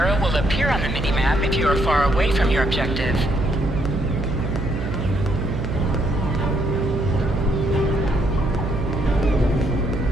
will appear on the mini-map if you are far away from your objective.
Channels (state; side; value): noise; right; hum, 4 dB below the sound